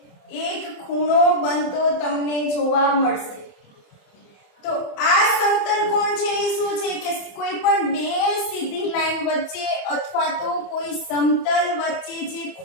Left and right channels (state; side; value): late; right; 27 ms